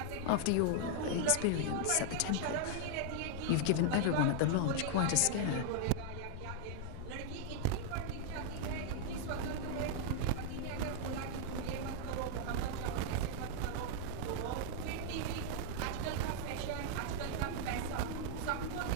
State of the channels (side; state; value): both; different; correlation 0.00